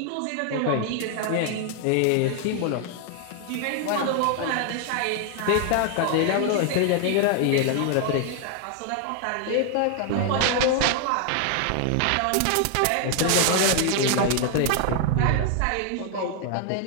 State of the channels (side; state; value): both; different; correlation 0.00